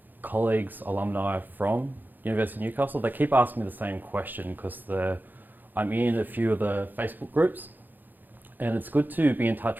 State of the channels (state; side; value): late; left; 0.087 ms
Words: colleagues, alumni from University of Newcastle. They keep asking me the same question because I'm in a few of the Facebook groups, and it's good to be in